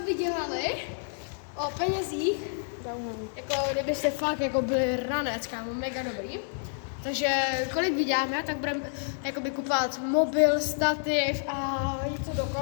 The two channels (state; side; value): silent; right; 59 dB below the other